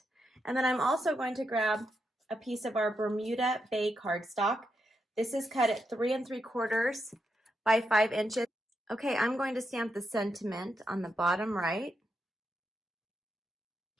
And then I'm also going to grab a piece of our Bermuda Bay cardstock. This is cut at 3 3/4 by 5 inches. Okay, I'm going to stamp the sentiment on the bottom right.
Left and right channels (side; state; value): both; normal; correlation 0.83